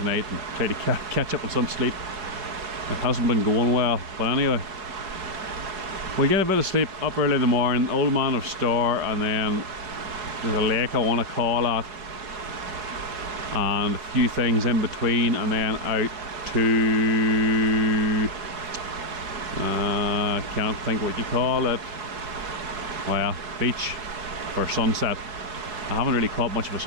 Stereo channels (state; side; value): late; left; 4.7 ms